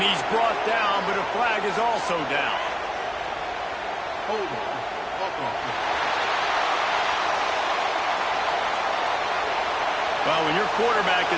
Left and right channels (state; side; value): identical; both; correlation 1.00